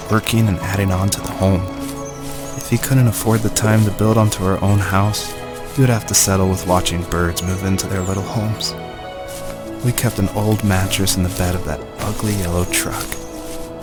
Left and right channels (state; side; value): identical; both; correlation 1.00